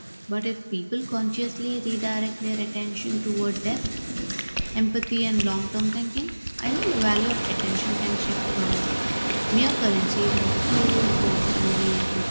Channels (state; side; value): inverted; both; correlation -1.00